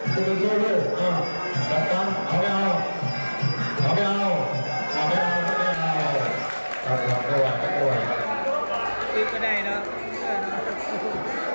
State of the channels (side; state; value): both; inverted; correlation -1.00